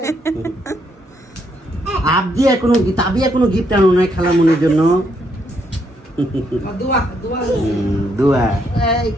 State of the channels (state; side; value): normal; both; correlation 0.75